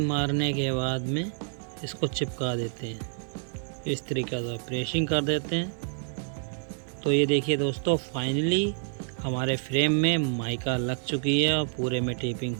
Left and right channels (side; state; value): left; silent; digital silence